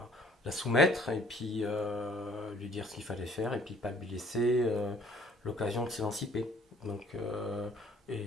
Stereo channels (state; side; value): normal; both; correlation 0.58